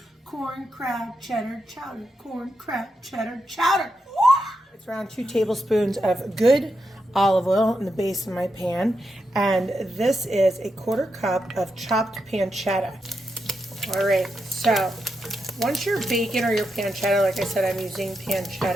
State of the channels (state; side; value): normal; both; correlation 0.85